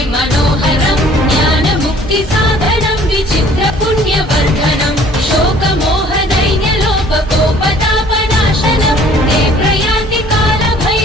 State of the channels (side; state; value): both; normal; correlation 0.54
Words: मनोहरं ज्ञानमुक्तिसाधनं विचित्रपुण्यवर्धनं शोकमोहदैन्यलोपकोपतापनाशनं ते प्रयान्ति